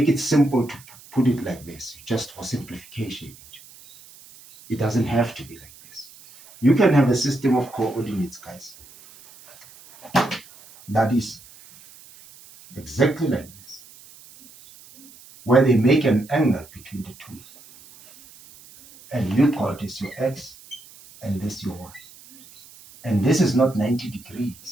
it simple to put it like this, just for simplification. It doesn't have to be like this. You can have a system of coordinates, guys, that is exactly like this, where they make an angle between the two. And you call this your x, and this your y. And this is not 90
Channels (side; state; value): right; noise; hiss, 22 dB below the sound